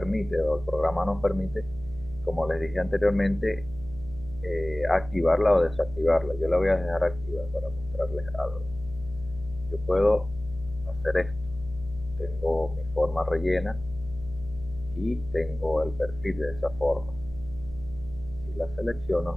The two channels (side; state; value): left; noise; hum, 14 dB below the sound